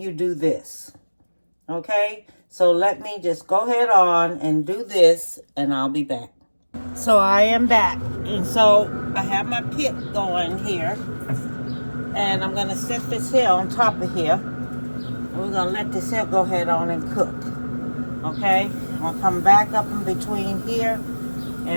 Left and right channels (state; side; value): inverted; both; correlation -1.00